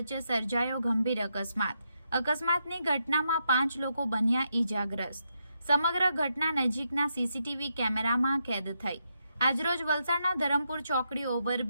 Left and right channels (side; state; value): both; inverted; correlation -0.81